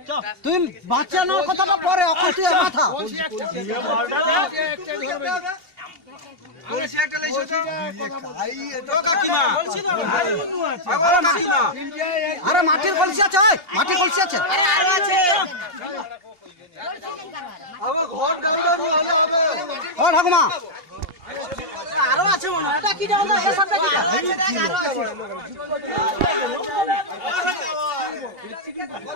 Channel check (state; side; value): late; left; 2.8 ms